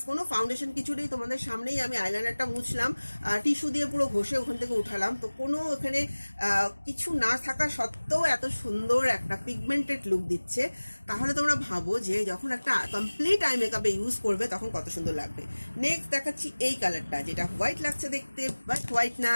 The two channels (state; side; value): inverted; both; correlation -1.00